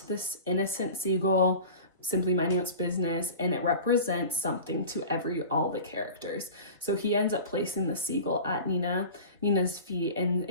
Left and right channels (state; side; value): inverted; both; correlation -0.36